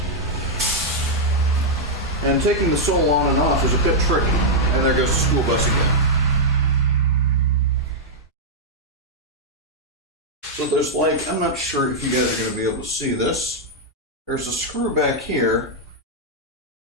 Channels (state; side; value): normal; both; correlation -0.03